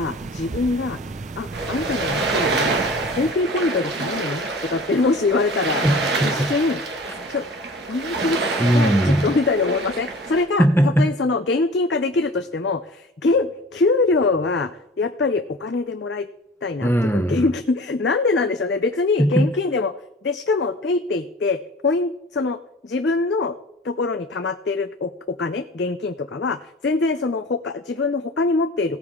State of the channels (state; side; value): normal; both; correlation 0.43